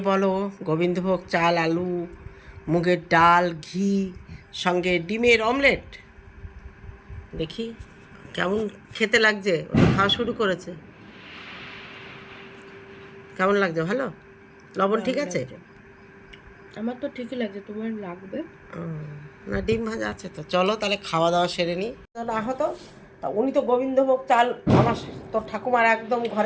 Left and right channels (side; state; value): both; identical; correlation 1.00